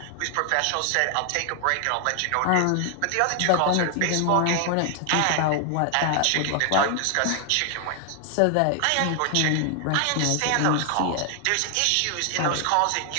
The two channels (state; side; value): different; both; correlation 0.00